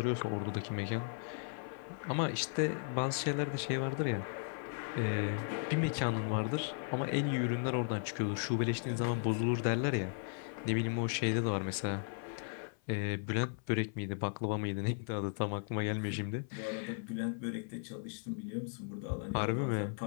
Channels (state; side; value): silent; right; 54 dB below the other